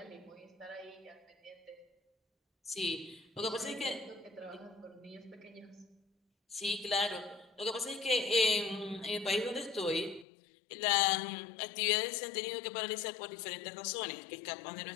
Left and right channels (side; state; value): right; drops out; at 10.2 s